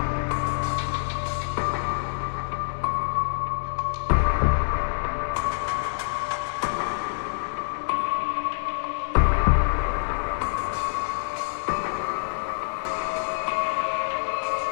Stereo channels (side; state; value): right; silent; digital silence